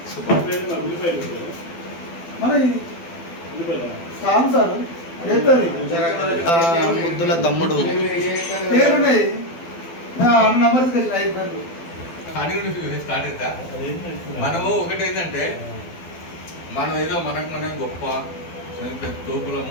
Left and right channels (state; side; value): late; right; 12 ms